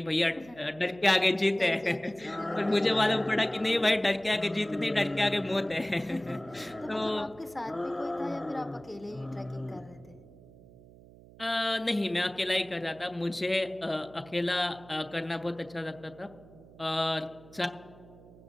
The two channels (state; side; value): noise; right; hum, 22 dB below the sound